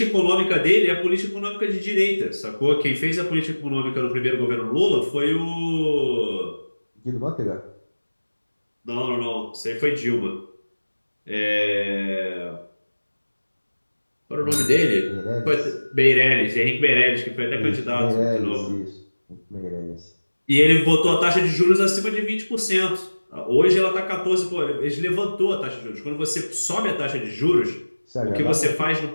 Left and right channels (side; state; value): both; inverted; correlation -1.00